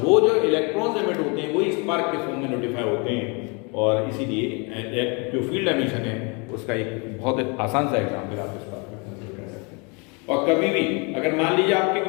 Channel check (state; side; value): quieter; right; 31.9 dB